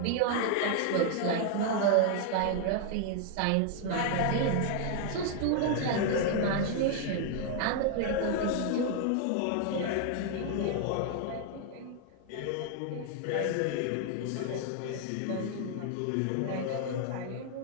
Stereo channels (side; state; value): both; different; correlation 0.00